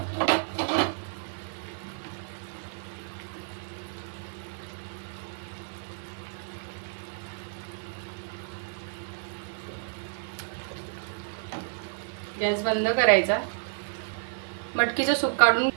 गॅस बंद करायचा. मटकीचं सूप काढून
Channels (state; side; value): silent; left; 57 dB below the other